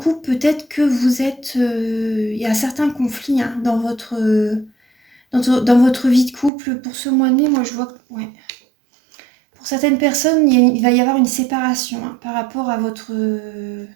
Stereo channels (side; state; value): left; drops out; at 6.5 s